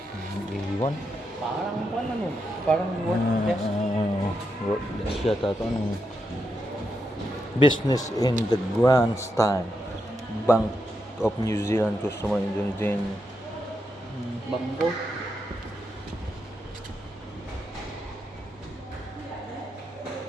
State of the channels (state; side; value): normal; both; correlation 0.84